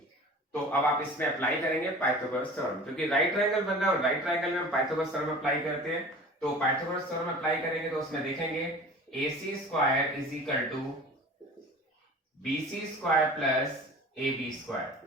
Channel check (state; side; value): normal; both; correlation 0.40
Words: तो अब आप इसमें अप्लाई करेंगे पाइथागोरस थ्योरम, क्योंकि राइट ट्रायंगल बन रहा है और राइट ट्रायंगल में हम पाइथागोरस थ्योरम अप्लाई करते हैं। तो पाइथागोरस थ्योरम अप्लाई करेंगे तो उसमें देखेंगे AC square is equal to BC square plus AB square.